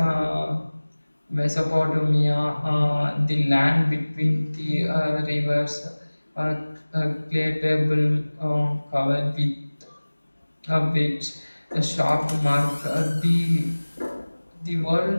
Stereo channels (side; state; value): both; inverted; correlation -1.00